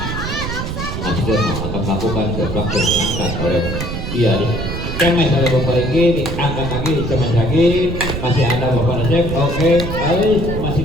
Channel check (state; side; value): noise; right; rumble, 5 dB below the sound